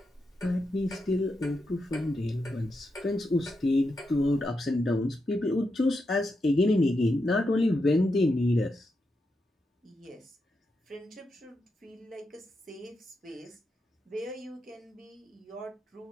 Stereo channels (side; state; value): both; normal; correlation 0.85